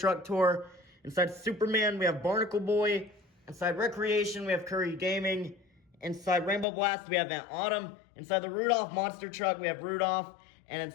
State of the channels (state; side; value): drops out; right; at 6.7 s